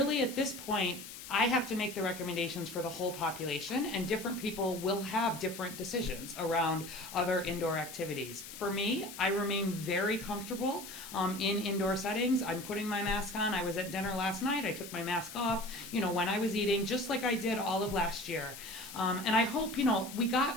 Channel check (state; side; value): noise; left; hiss, 12 dB below the sound